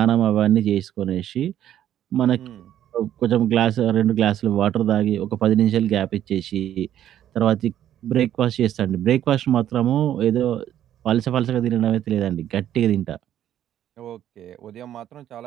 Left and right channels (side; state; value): left; quieter; 11.3 dB